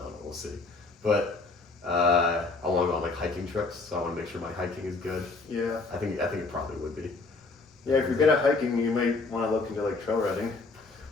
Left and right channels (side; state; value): right; quieter; 3.7 dB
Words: know, we'll see. But I want to go on like hiking trips, so I want to make sure my hiking is good. Yeah. I think it probably would be. Yeah, if you're good at hiking, you might want to look into like trail running.